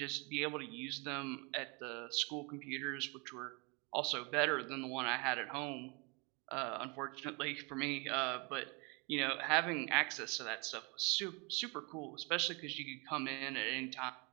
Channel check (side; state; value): left; quieter; 30.7 dB